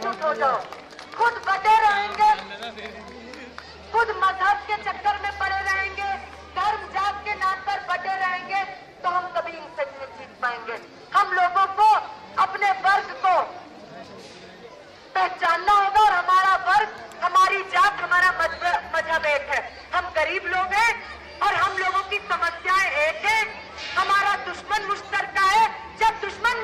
हो जाओ, खुद बटे रहेंगे, खुद मजहब के चक्कर में पड़े रहेंगे, धर्म जात के नाम पर बटे रहेंगे तो हम कभी इनसे नहीं जीत पाएंगे। हम लोगों को अपने वर्ग को पहचानना होगा और हमारा वर्ग, हमारी जात, हमारा मजहब एक है। हम गरीब लोग हैं और हम लोगों की समस्याएं एक है। हमारा दुश्मन मुश्तरका है। जब दुश्मन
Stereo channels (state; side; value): identical; both; correlation 1.00